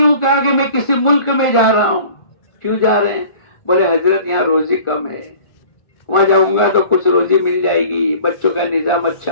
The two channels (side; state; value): right; late; 1.4 ms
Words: کہا کہ میں کسی ملک میں جا رہا ہوں۔ کیوں جا رہے ہیں؟ بولے حضرت یہاں روزی کم ہے، وہاں جاؤں گا تو کچھ روزی مل جائے گی، بچوں کا نظام